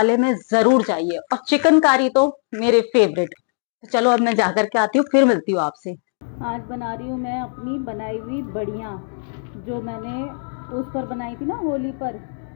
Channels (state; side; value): silent; right; digital silence